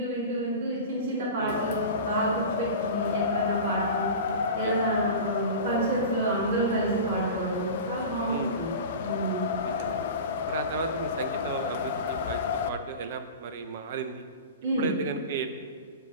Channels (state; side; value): inverted; both; correlation -0.32